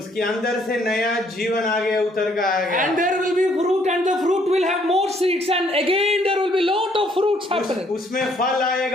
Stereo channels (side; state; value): both; normal; correlation 0.66